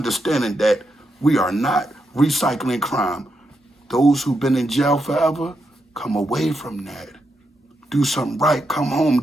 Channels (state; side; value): normal; both; correlation 0.83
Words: that we are not recycling crime. Those who've been in jail forever, come away from that. Do something right. Come home,